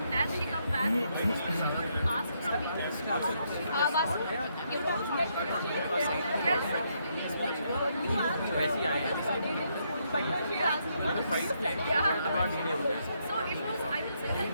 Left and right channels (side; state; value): both; inverted; correlation -0.75